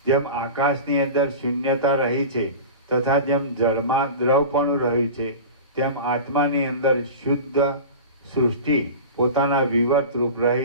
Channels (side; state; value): both; inverted; correlation -0.32